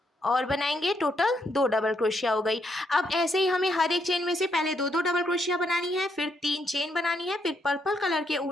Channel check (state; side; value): normal; both; correlation 0.76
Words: और बनाएंगे, टोटल 2 डबल क्रोशिया हो गई। अब ऐसे ही हमें हर एक चेन में से पहले 2-2 डबल क्रोशिया बनानी है, फिर 3 चेन बनानी है, फिर पर्पल कलर के